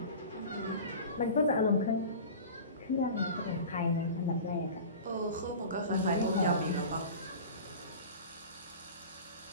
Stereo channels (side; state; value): both; inverted; correlation -0.36